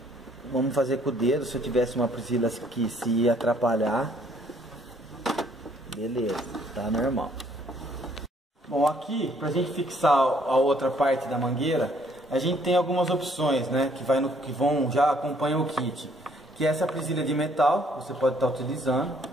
Vamos fazer com o dedo. Se eu tivesse uma presilha que se ia atrapalhar, beleza, tá normal. Bom, aqui pra gente fixar a outra parte da mangueira, a gente tem algumas opções, né? Que vão já acompanham o kit. Que é essa presilha de metal, você pode estar utilizando.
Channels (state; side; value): normal; both; correlation 0.64